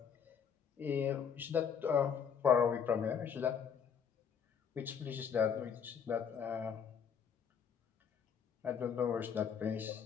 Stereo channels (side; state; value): right; quieter; 7.3 dB